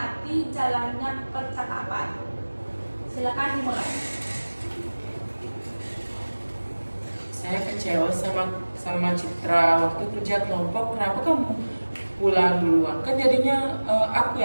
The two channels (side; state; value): both; inverted; correlation -1.00